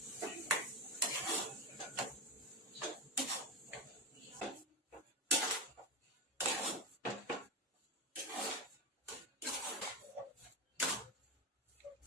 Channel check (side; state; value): both; normal; correlation 0.15